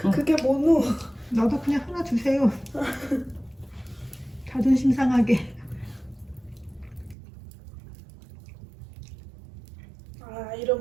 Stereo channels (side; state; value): left; drops out; at 7.2 s